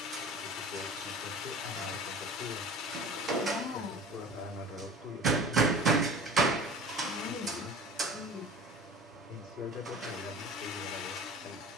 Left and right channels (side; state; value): both; normal; correlation 0.40